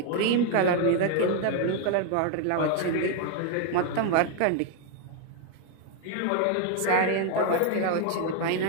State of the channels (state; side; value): different; both; correlation 0.00